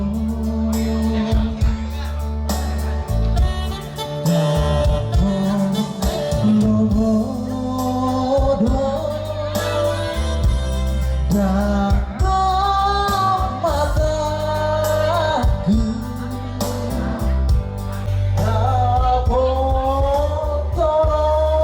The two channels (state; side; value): identical; both; correlation 1.00